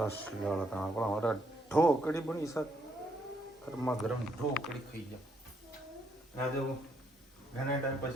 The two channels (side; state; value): both; normal; correlation 0.73